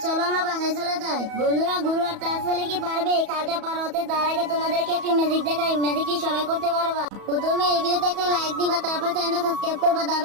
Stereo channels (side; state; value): left; late; 34 ms